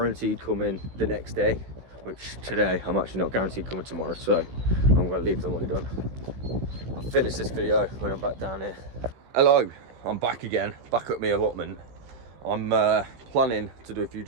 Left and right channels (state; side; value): late; left; 16 ms